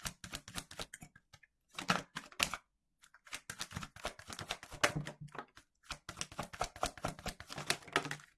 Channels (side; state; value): both; identical; correlation 1.00